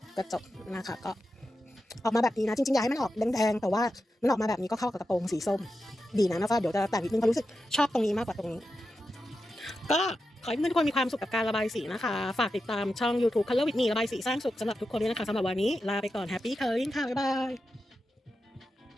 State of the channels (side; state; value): both; normal; correlation 0.89